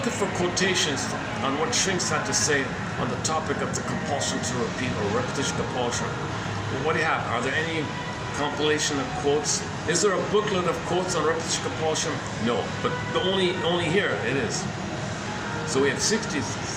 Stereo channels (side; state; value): both; identical; correlation 1.00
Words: for quotations on what shrinks had to say on the topic of the compulsion to repeat or repetition compulsion. Well, what do you have? Are there any compilation of quotes? Is there a booklet of quotes on repetition compulsion? No, but only here it is. So we have